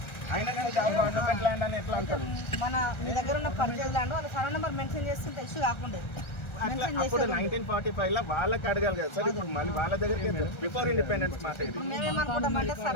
అయినా కానీ గవర్నమెంట్ ల్యాండ్ అని ఎట్లా అంటారు? మన మీ దగ్గర ఉన్న పర్చేజ్ ల్యాండ్ వాళ్ళ సర్వే నెంబర్ మెన్షన్ చేస్తే ఇష్యూ కాకుండా అప్పుడు 1945 లో వాళ్ళకి అడగాలి కదా సార్. ఇప్పుడు మళ్ళీ వాళ్ళ దగ్గరికి బిఫోర్ ఇండిపెండెన్స్ మాట మేమేమనుకుంటామంటే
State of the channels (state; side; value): late; right; 1.3 ms